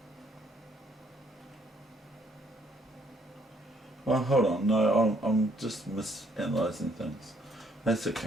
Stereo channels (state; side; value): normal; both; correlation 0.68